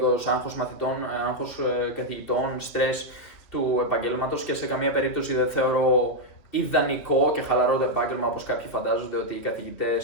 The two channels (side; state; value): right; late; 3.1 ms